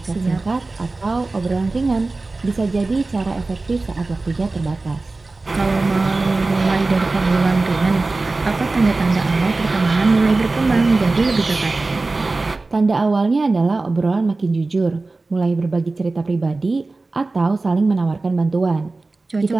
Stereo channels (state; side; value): quieter; left; 3.4 dB